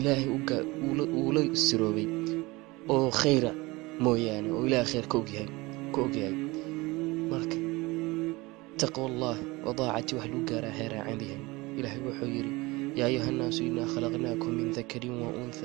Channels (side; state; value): left; quieter; 22.6 dB